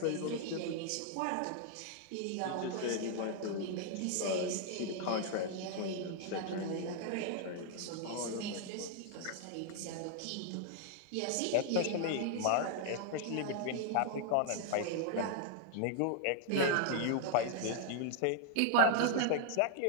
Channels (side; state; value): both; different; correlation 0.00